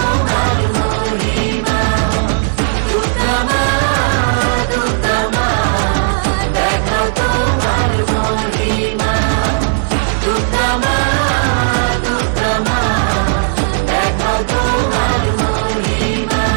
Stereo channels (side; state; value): left; silent; digital silence